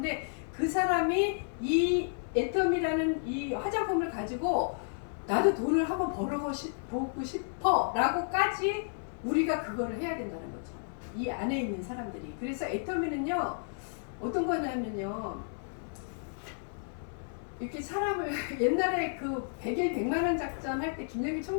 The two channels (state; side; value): silent; right; 56 dB below the other